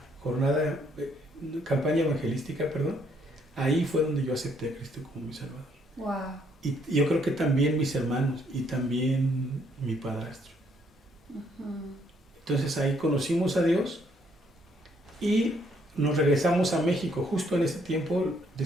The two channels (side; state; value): both; normal; correlation 0.69